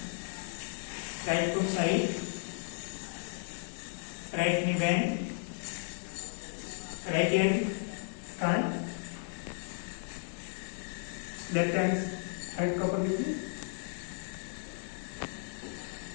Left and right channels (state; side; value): silent; right; digital silence